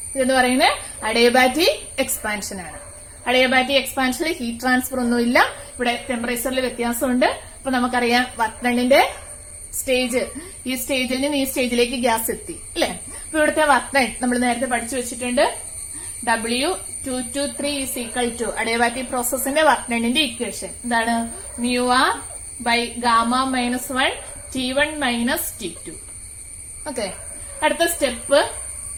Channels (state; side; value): identical; both; correlation 1.00